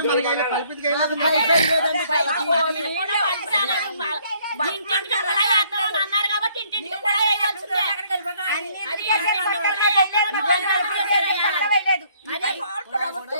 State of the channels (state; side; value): inverted; both; correlation -0.64